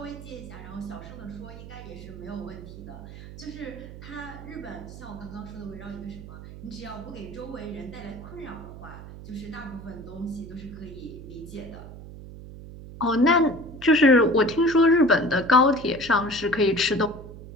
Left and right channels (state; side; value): noise; right; hum, 14 dB below the sound